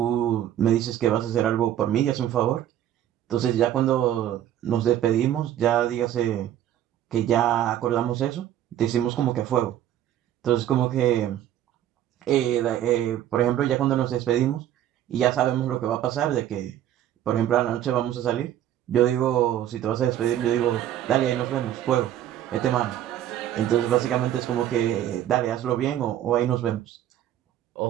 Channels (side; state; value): left; quieter; 11.7 dB